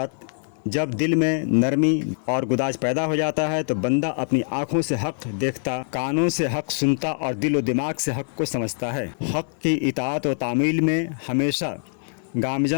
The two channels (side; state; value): right; silent; 63 dB below the other